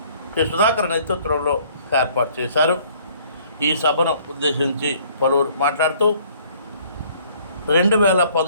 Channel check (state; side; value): inverted; both; correlation -0.58